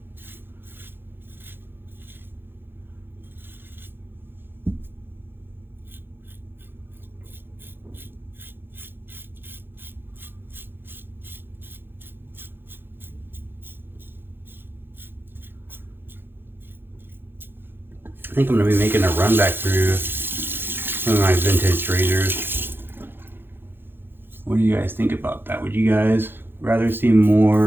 I think I'm going to be making a run back through some of my vintage razors. What do you guys think about that? Would you guys rather see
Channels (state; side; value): late; left; 0.10 ms